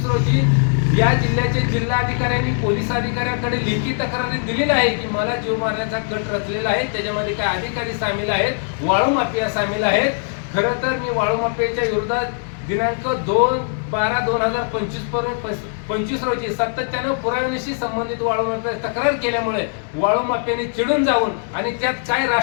रोजी या जिल्ह्याचे जिल्हाधिकाऱ्यांनी पोलीस अधिकाऱ्यांकडे लेखी तक्रारी दिलेली आहे की मला जीव मारण्याचा कट रचलेला आहे। त्याच्यामध्ये काय अधिकारी सामील आहेत, वाळू माफिया सामील आहेत। खरं तर मी वाळू माफियाच्या विरोधात दिनांक 2/12/2025 रोजी सातत्यानं पुराव्याशी संबंधित वाळू माफिया तक्रार केल्यामुळे वाळू माफियाने चिडून जाऊन आणि त्यात काय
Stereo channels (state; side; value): silent; right; digital silence